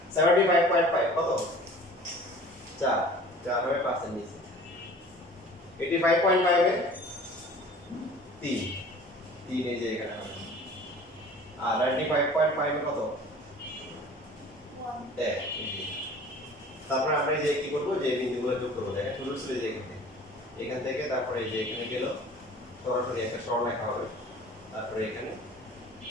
75.5 কত 4 4 হবে 5 এর নিচে 85.5 এ 3 3 এই যে এখানে হবে আর 95.5 এ কত 1 এক তারপরে আমরা এই যে কি করব যে বিন্দুগুলো যোগ করব দেখেন শুরু ছিল যে এখান থেকে তারপরে এই যে এখানে গেল সরাসরি একটা সরলরেখা হবে তারপরে এখানে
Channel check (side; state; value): both; normal; correlation 0.45